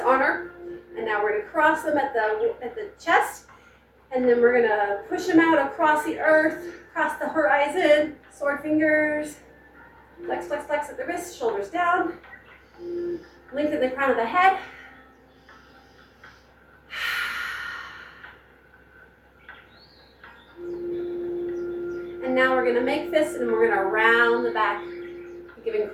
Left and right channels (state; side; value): identical; both; correlation 1.00